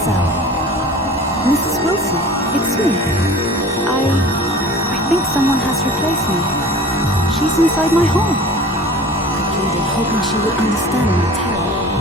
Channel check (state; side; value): normal; both; correlation 0.41